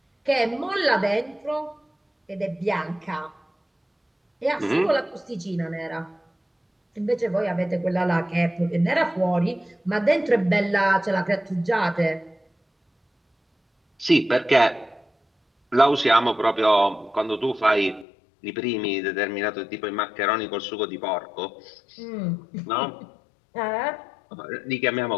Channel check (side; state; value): right; drops out; at 18.1 s